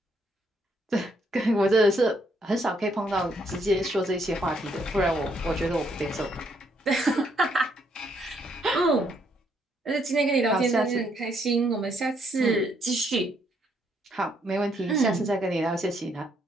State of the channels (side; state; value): both; normal; correlation 0.72